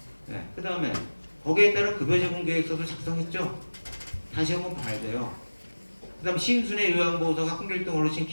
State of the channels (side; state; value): both; inverted; correlation -1.00